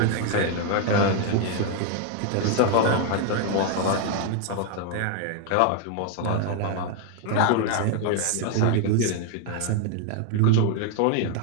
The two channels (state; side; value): different; both; correlation 0.00